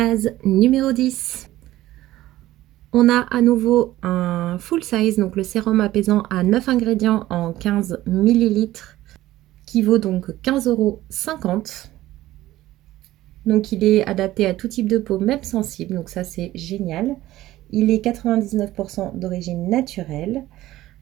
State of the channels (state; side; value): quieter; left; 15.5 dB